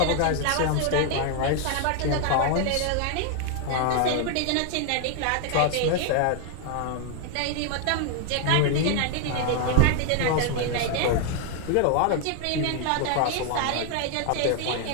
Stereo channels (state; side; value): different; both; correlation 0.00